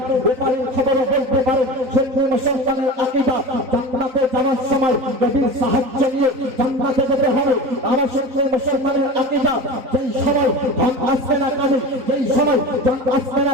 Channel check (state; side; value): late; left; 3.9 ms